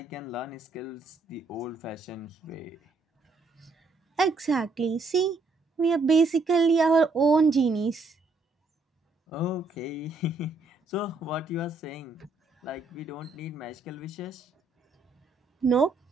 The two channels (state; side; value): quieter; left; 3.6 dB